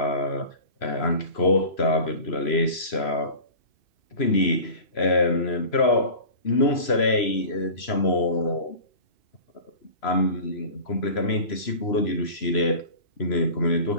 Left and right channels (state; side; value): late; right; 3.0 ms